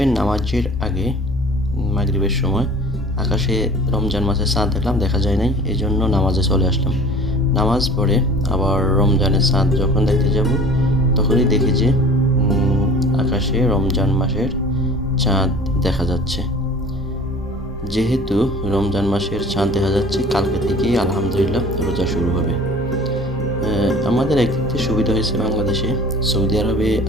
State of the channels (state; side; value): normal; both; correlation 0.44